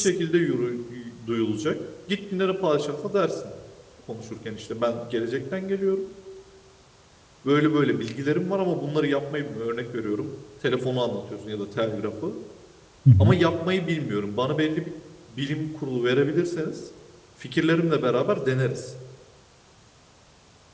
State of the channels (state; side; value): identical; both; correlation 1.00